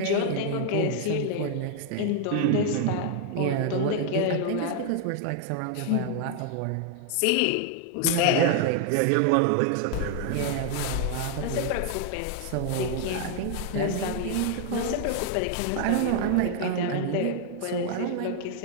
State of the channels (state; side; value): different; both; correlation 0.00